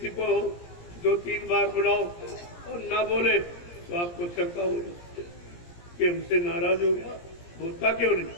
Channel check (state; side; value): late; right; 17 ms